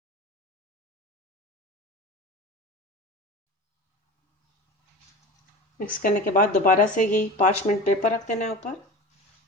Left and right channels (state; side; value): normal; both; correlation 0.33